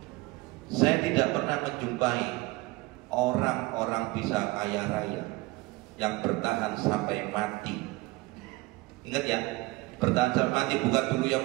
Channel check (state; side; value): quieter; left; 21.5 dB